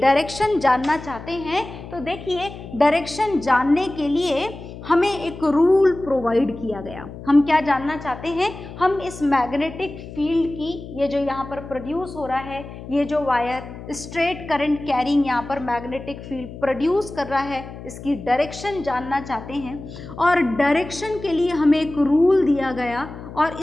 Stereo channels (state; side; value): noise; left; hum, 13 dB below the sound